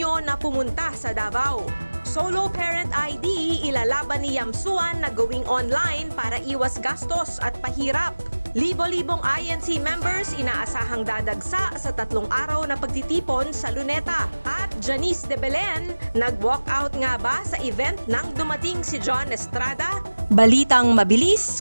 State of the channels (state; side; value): inverted; both; correlation -1.00